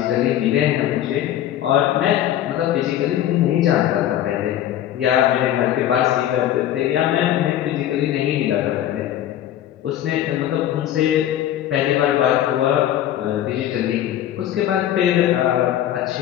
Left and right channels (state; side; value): quieter; right; 11.9 dB